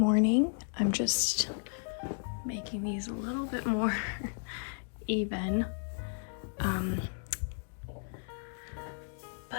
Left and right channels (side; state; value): right; silent; digital silence